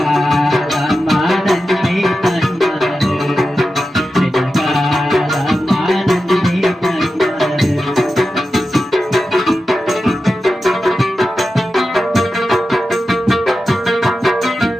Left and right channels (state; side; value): normal; both; correlation 0.92